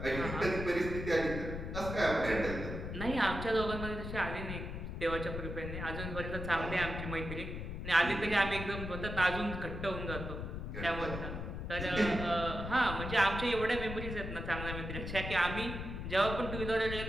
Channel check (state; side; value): noise; left; rumble, 6 dB below the sound